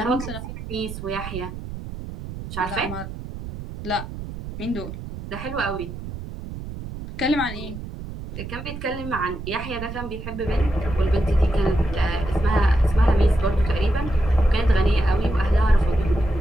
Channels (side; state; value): right; noise; rumble, 10 dB below the sound